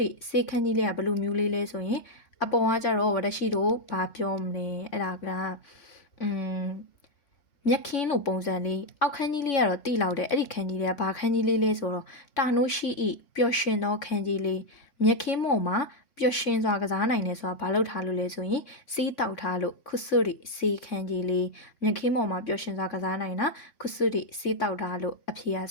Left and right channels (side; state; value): right; late; 3.5 ms